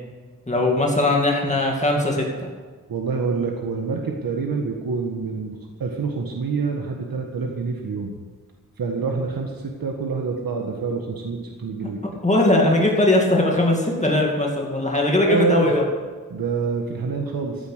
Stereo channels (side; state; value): both; normal; correlation 0.33